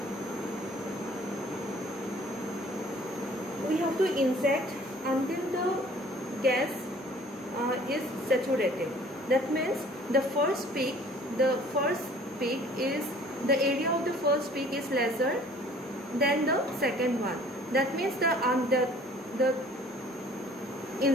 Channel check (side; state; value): both; normal; correlation 0.53